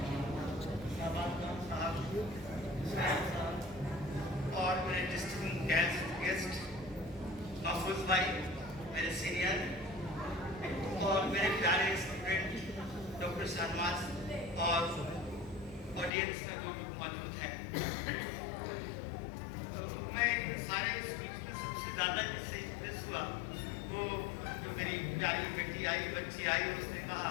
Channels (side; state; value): right; drops out; at 16.1 s